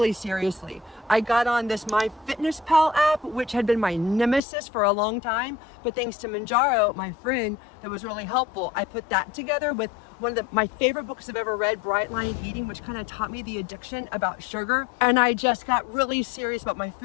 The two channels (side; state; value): right; drops out; at 4.4 s